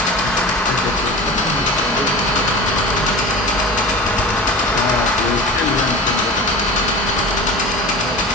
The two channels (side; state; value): both; normal; correlation 0.34